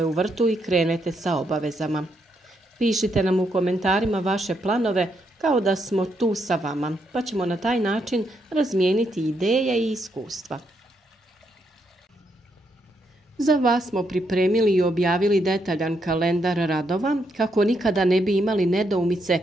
u vrtu i krenete sa obavezama. Pišite nam u komentarima vaše planove kao da smo tu sa vama, pa ćemo na taj način razmijeniti ideje i iskustva. Za vas smo pripremili i objavili detaljan kalendar radova kako nikada ne bi imali nedoumice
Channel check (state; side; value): normal; both; correlation 0.78